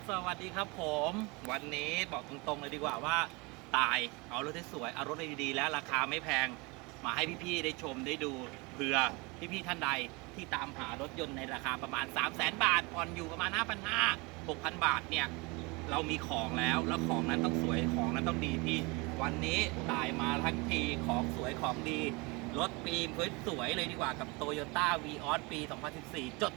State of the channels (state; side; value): quieter; left; 26.9 dB